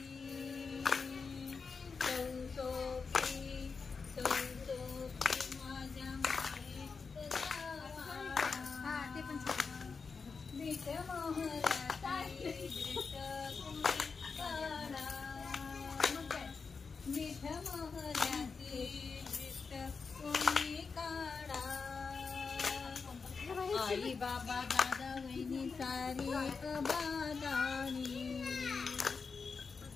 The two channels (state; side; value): quieter; right; 5.0 dB